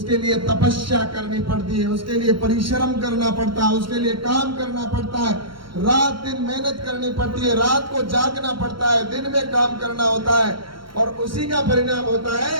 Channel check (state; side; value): late; left; 0.73 ms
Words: लिए तपस्या करनी पड़ती है, उसके लिए परिश्रम करना पड़ता है, उसके लिए काम करना पड़ता है, रात दिन मेहनत करनी पड़ती है, रात को जागना पड़ता है, दिन में काम करना होता है, और उसी का परिणाम होता है